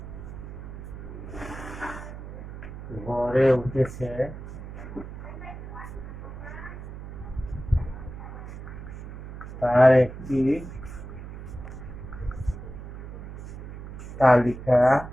গড়ে উঠেছে তার একটি তালিকা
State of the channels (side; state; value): right; noise; hum, 11 dB below the sound